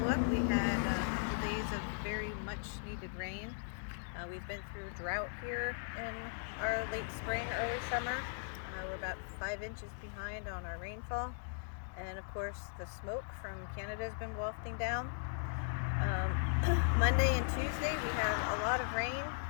We had a couple days of very much needed rain. We've been through drought here in our late spring, early summer. We're about 5 inches behind on our rainfall. And of course the smoke from Canada has been wafting down. Monday and Tuesday we had a lot of rain.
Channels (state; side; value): silent; right; digital silence